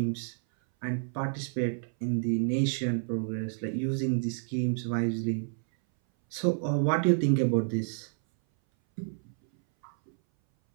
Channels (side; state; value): left; silent; 58 dB below the other